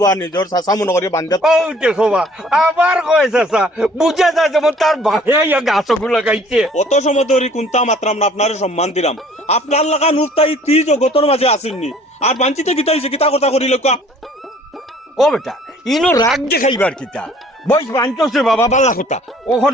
বা নিজের চাচা মনে করিয়া বান্ধে ও দেখো বা আবার কয় চাচা বুঝা যায় যেমন তার ভাইয়া গাছগুলো লাগাইছে অত সময় ধরে কোনটা মাত্রাম না আপনার সম্মান দিলাম আপনার লাগা নুফতাই তি জগতর মাঝে আসেননি আর বাঞ্চিতে কিতা হয়েছে কিতা কথা করিল ও বেটা ইনো রাগ দেখাইবার কিতা বয়স বাঞ্চছে বাবা বালা কথা ওখন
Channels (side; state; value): both; normal; correlation 0.55